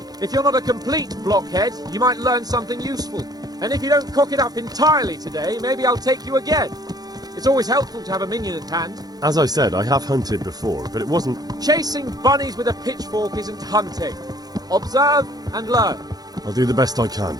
If you're not a complete blockhead, you might learn something useful. And if you don't cock it up entirely today, maybe I'll take you again. It's always helpful to have a minion at hand. As I said, I have hunted before, but it wasn't... Chasing bunnies with a pitchfork isn't hunting. Observe and learn. I'll do the best I can,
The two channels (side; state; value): left; late; 0.19 ms